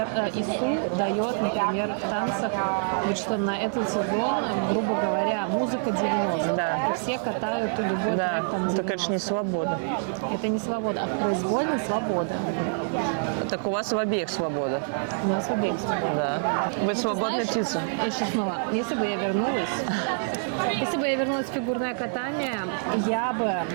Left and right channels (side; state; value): left; silent; digital silence